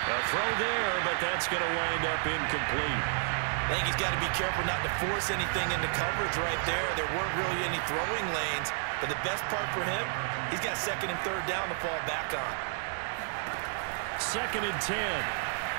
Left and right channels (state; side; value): silent; left; digital silence